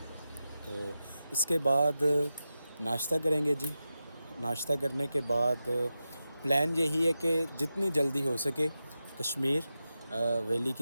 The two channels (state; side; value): inverted; both; correlation -0.91